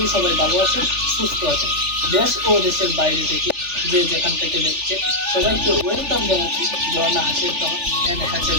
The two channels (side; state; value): left; late; 3.4 ms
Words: সবাই ভালো আছেন, সুস্থ আছেন। দেশ ও দেশের বাইরে থেকে যে যেখান থেকে দেখছেন সবাইকে ওয়েলকাম জানাচ্ছি ঝর্ণা হাসির খামার অ্যান্ড